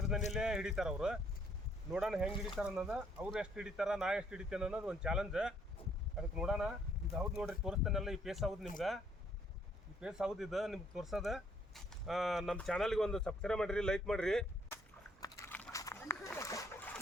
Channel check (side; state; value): both; normal; correlation 0.67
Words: ಹಿಡಿತಾರೆ ಅವರು. ನೋಡೋಣ ಹೆಂಗೆ ಹಿಡಿತಾರೆ ಅನ್ನೋದು. ಅವ್ರು ಎಷ್ಟು ಹಿಡಿತಾರ, ನಾ ಎಷ್ಟು ಹಿಡಿತೇನೆ ಅನ್ನೋದು ಒಂದು ಚಾಲೆಂಜ್. ಅದಕ್ಕೆ ನೋಡೋಣ. ಇದು ಹೌದು ನೋಡ್ರಿ, ತೋರಿಸ್ತೇನೆಲ್ಲ. ಈ ಪೇಸ್ ಹೌದು ನಿಮ್ಗೆ. ಈ ಪೇಸ್ ಹೌದು ಇದು ನಿಮ್ಗೆ ತೋರ್ಸೋದು. ನಮ್ಮ ಚಾನಲ್ಗೆ ಒಂದು ಸಬ್ಸ್ಕ್ರೈಬ್ ಮಾಡಿರಿ, ಲೈಕ್ ಮಾಡಿರಿ.